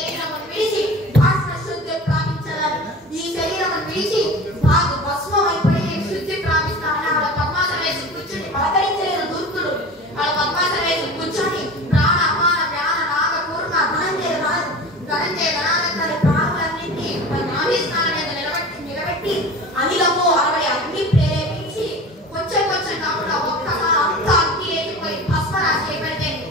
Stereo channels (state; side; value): normal; both; correlation 0.36